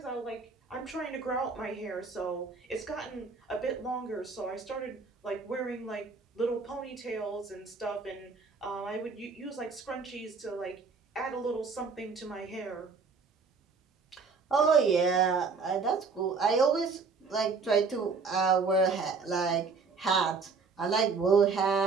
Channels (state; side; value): quieter; left; 4.7 dB